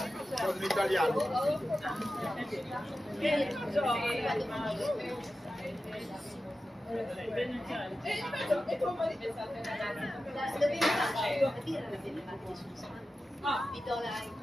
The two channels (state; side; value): normal; both; correlation 0.93